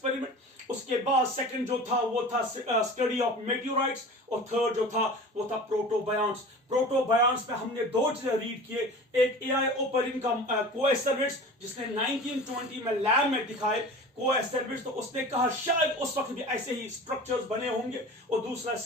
उसके बाद सेकंड जो था वो था स्टडी ऑफ मेटियोराइट्स, और थर्ड जो था वो था प्रोटोबायंट्स। प्रोटोबायंट्स में हमने दो चीजें रीड किए, एक एआई ओपरिन का कोएस्टर्विट्स जिसने 1920 में लैब में दिखाए कोएस्टर्विट्स, तो उसने कहा शायद उस वक्त भी ऐसे ही स्ट्रक्चर्स बने होंगे, और दूसरा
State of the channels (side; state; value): both; normal; correlation 0.38